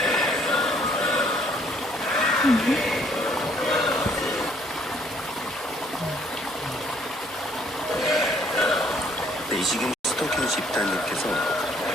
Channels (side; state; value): both; normal; correlation 0.63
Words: 네, 지금 스토킹 집단님께서